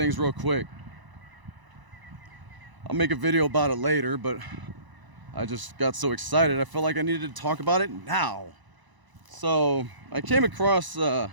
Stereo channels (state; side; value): late; left; 1.0 ms